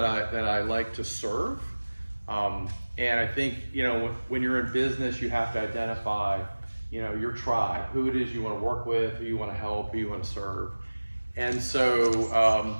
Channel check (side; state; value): both; inverted; correlation -1.00